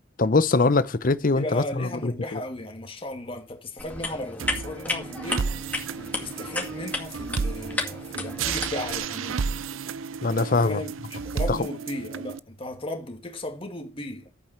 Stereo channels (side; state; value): both; normal; correlation 0.35